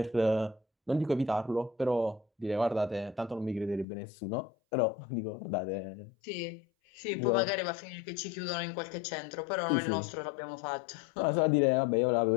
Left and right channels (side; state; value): right; drops out; at 3.9 s